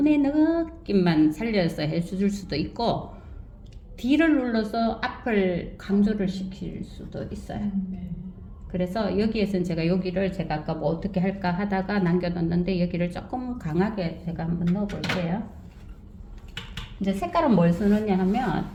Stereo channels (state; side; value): identical; both; correlation 1.00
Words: 느낌만 살려서 해줄 수도 있고 D를 눌러서 앞을 강조를 시킬 수도 있어요. 그래서 여기에서는 제가 여기를 제가 아까 뭐 어떻게 할까 하다가 남겨뒀는데 여기를 조금 강하게 제가 한번 넣어볼게요. 이제 색깔은 뭘 쓰느냐